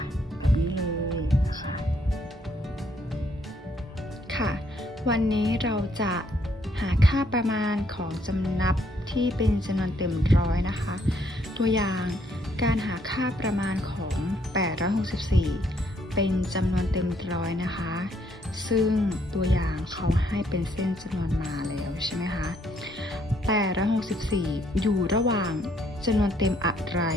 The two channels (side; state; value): both; normal; correlation 0.69